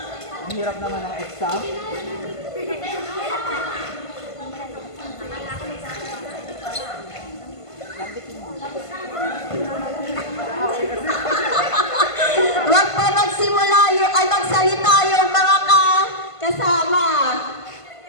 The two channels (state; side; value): late; right; 1.5 ms